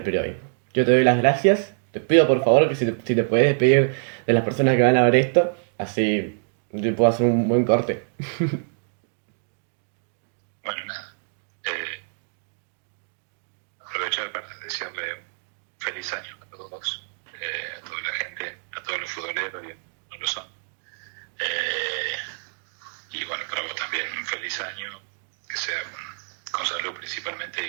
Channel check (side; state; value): left; silent; digital silence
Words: periodismo. Yo te doy las gracias. Te pido por favor que si te puedes despedir de las personas que van a ver esto, así yo puedo hacer un buen corte. Bueno, nada. Aprovechar para desearle un feliz año a todos, a toda la gente, a todos los futboleros, y no lo son. Y bueno, para vos también un feliz año, que sea con salud principalmente